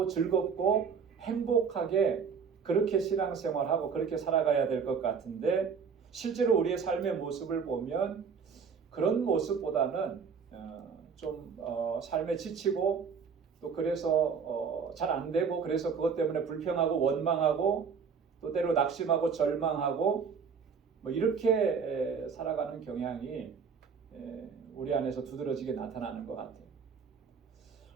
즐겁고 행복하게 그렇게 신앙생활하고 그렇게 살아가야 될 것 같은데 실제로 우리의 삶의 모습을 보면 그런 모습보다는 삶에 지치고 또 그래서 잘 안 되고 그래서 그것 때문에 불평하고 원망하고 또 때로 낙심하고 절망하고 이렇게 살아가는 경향이 우리 안에서 두드러지게 나타나는 것 같아요.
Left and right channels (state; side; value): quieter; left; 6.0 dB